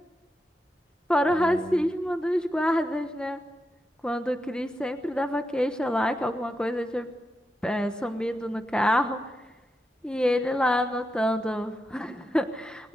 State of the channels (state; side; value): normal; both; correlation 0.87